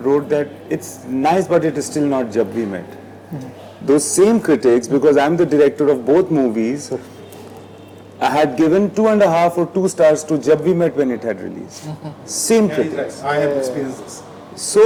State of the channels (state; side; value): identical; both; correlation 1.00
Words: that it's nice, but it is still not Jab We Met. Those same critics, because I'm the director of both movies, I had given 2.5 or 2 stars to Jab We Met when it had released. Same critics. I have experienced this.